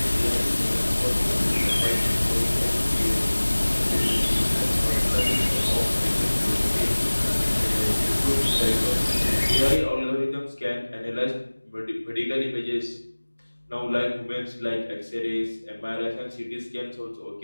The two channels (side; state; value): both; inverted; correlation -1.00